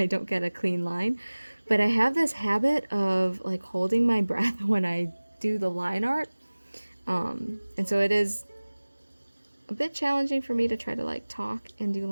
don't get a clean line. But I have this habit of like holding my breath when I do the line art, and so it is a bit challenging for me to try to like talk and do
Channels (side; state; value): both; inverted; correlation -1.00